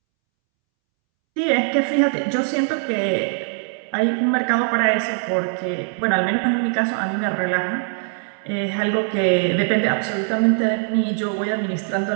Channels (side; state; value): left; silent; 65 dB below the other